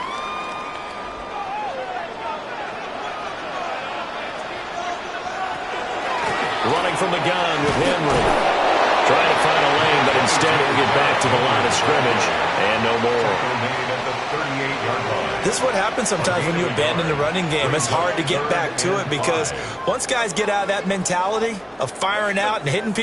Running from the gun with Henry. Trying to find a lane, but instead he'll get back to the line of scrimmage. And no more. This is what happens sometimes when you abandon the running game. It's hard to get back to it, because once guys get out of that mentality of firing out and hitting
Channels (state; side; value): identical; both; correlation 1.00